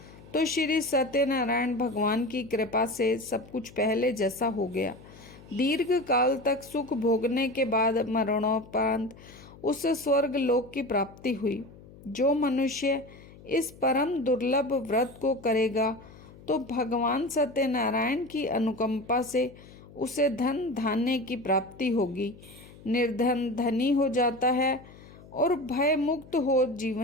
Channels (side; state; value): left; noise; hum, 21 dB below the sound